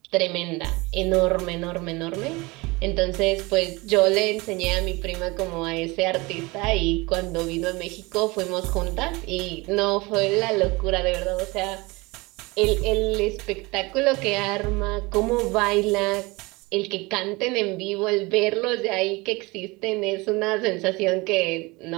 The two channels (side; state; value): left; quieter; 24.1 dB